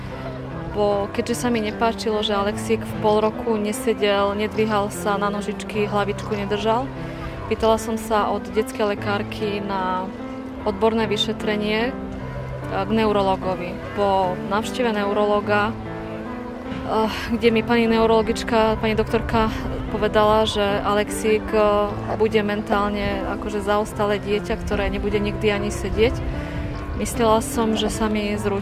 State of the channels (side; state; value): both; identical; correlation 1.00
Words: Keďže sa mi nepáčilo, že Alexík v pol roku nesedel, nedvíhal sa na nožičky, hlavičku nedržal, pýtala som sa od detskej lekárky na odborné vyšetrenie k neurologovi. Po návšteve neurologa, kde mi pani neurologička, pani doktorka povedala, že Alexík bude mentálne akože zaostalé dieťa, ktoré nebude nikdy ani sedieť, myslela som, že sa mi